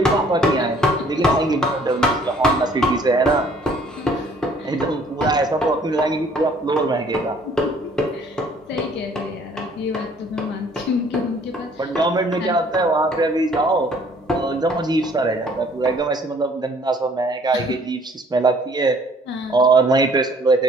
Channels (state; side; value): normal; both; correlation 0.58